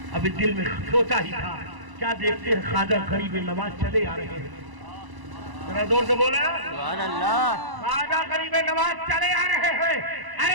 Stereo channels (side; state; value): left; late; 1.0 ms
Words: अभी दिल में सोचा ही था, क्या देखते हैं ख्वाजा गरीब नवाज चले आ रहे हैं। जरा जोर से बोले सुभान अल्लाह। ख्वाजा गरीब नवाज चले आ रहे हैं।